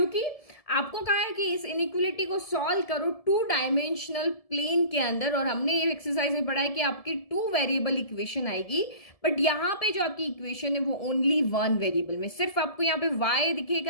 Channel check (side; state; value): right; late; 1.7 ms